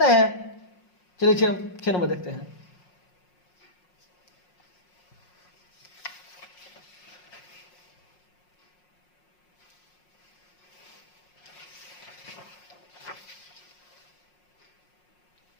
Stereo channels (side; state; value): right; late; 5.5 ms